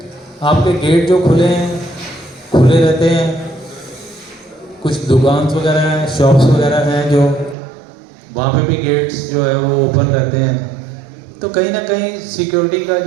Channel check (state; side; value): drops out; left; at 7.6 s